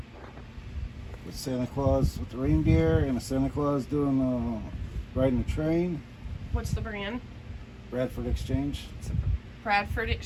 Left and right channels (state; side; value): identical; both; correlation 1.00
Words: with Santa Claus with the reindeer and a Santa Claus doing riding a train. What's the brand? Bradford Exchange. It's a Bradford